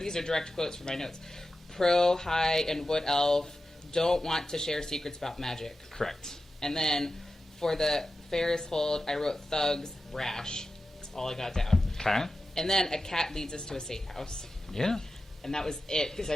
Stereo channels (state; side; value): normal; both; correlation 0.92